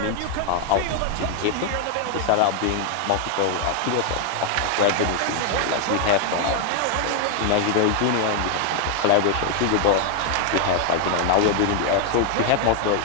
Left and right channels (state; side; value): different; both; correlation 0.00